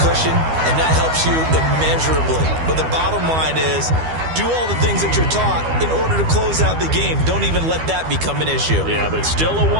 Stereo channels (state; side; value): late; left; 12 ms